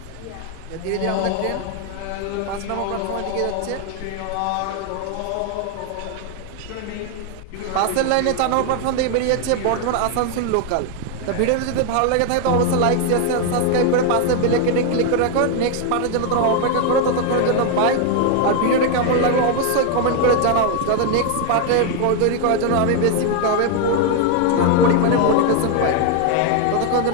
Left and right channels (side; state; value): both; different; correlation 0.01